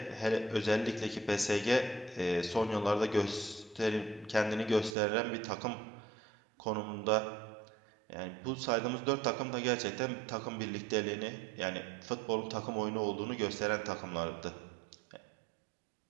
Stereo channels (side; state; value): left; drops out; at 5.0 s